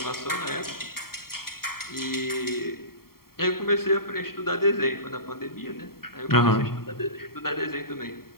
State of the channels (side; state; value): right; late; 0.93 ms